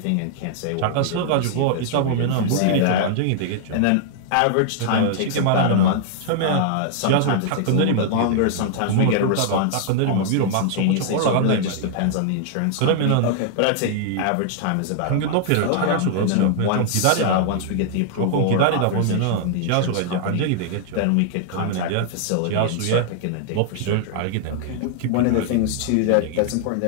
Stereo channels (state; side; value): different; both; correlation 0.00